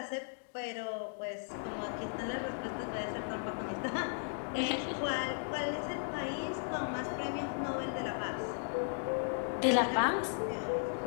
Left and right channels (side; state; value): right; silent; digital silence